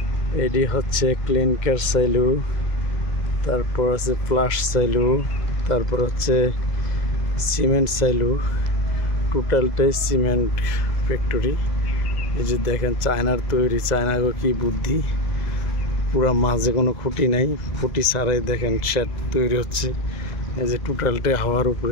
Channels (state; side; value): late; right; 2.0 ms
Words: এটি হচ্ছে ক্লিনকার সাইলু, তারপর আছে ফ্লাশ সাইলু, তারপর হচ্ছে সিমেন্ট সাইলু। টোটালটাই সিমেন্ট ফ্যাক্টরি। এই যে দেখেন চায়নার তৈরি, চায়নার কি বুদ্ধি, পুরা মাঝে কোনো খুঁটি নাই, খুঁটি ছাড়াই দেখেন শেড তৈরি হচ্ছে। এই যে টোটালটাই হাওয়ার